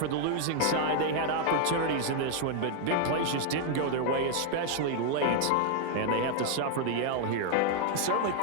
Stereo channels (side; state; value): both; different; correlation 0.00